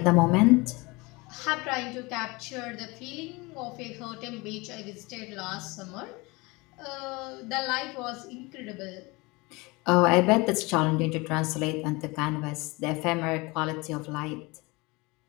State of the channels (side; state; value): right; quieter; 24.8 dB